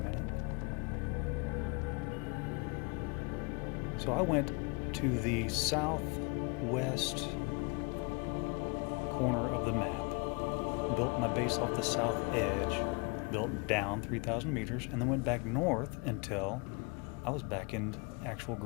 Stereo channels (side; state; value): right; quieter; 31.0 dB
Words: So I went to the southwest corner of the map, built my base off the south edge, built down 3,000 meters, and then went back north until I was back in actual